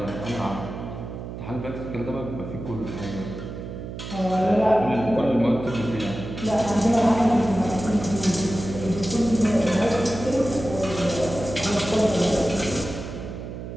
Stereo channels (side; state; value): right; noise; hum, 9 dB below the sound